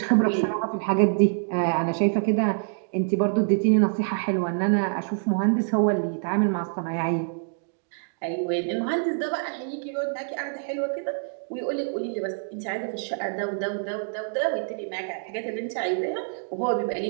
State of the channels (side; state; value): left; silent; digital silence